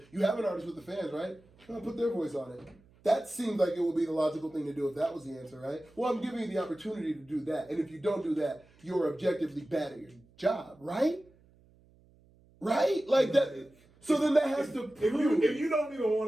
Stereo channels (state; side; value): noise; right; hum, 29 dB below the sound